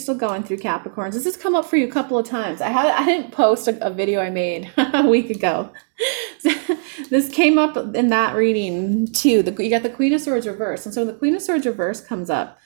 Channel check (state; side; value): silent; left; digital silence